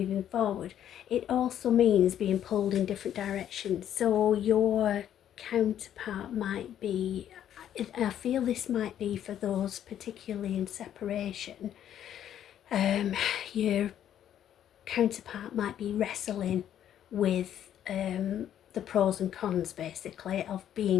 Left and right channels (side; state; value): right; quieter; 10.5 dB